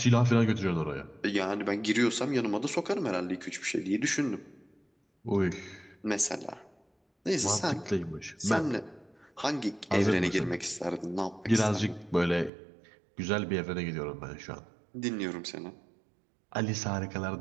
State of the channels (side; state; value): left; drops out; at 12.5 s